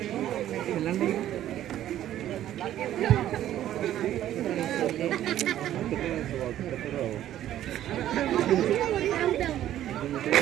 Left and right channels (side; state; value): left; quieter; 12.3 dB